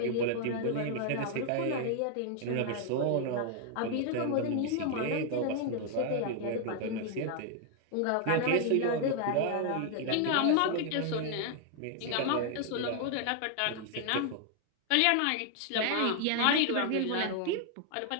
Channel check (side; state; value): both; different; correlation 0.00